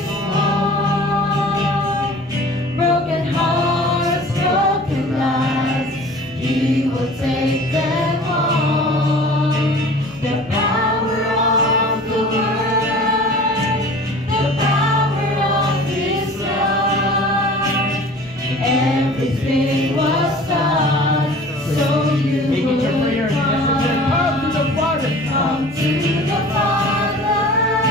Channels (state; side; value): normal; both; correlation 0.44